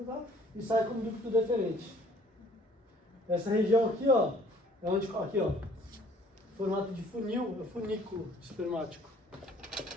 e sai como ducto deferente. Essa região aqui, ó, é onde, aqui, ó, formato de funil, é funículo espermático.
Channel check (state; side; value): normal; both; correlation 0.56